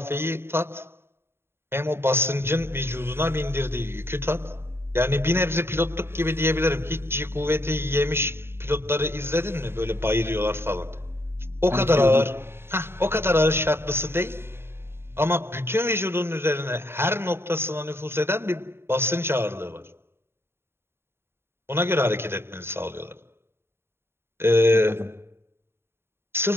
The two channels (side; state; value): left; late; 0.11 ms